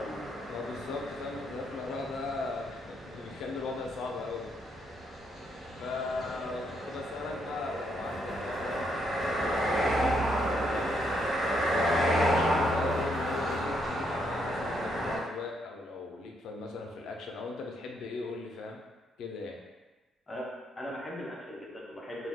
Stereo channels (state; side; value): normal; both; correlation 0.75